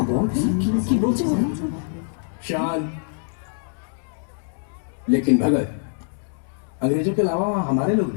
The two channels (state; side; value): silent; right; 63 dB below the other